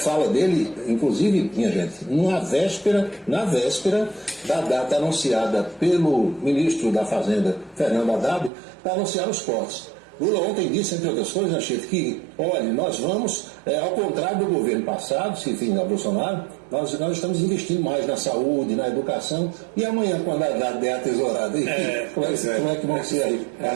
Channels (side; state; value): left; drops out; at 8.5 s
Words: dele, inclusive, minha gente, na véspera da data anunciada pelo ministro da Fazenda, Fernando Haddad, para anunciar os cortes. Lula ontem disse, entre outras coisas, Chico, que, olha, nós vamos, ao contrário do governo passado, se enfim, da Bolsonaro, nós estamos investindo mais na saúde, na educação, e amanhã, quando a Haddad der a tesourada, como é que vão ser aí